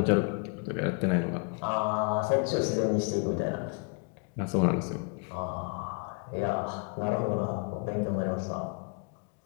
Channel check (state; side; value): quieter; right; 33.1 dB